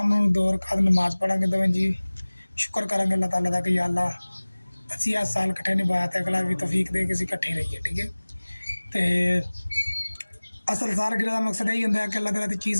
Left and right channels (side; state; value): both; inverted; correlation -1.00